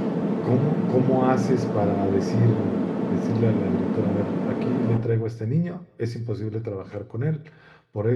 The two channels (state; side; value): identical; both; correlation 1.00